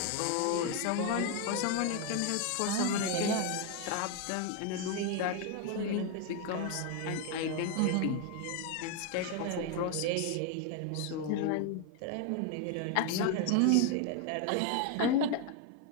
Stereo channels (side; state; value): both; different; correlation 0.01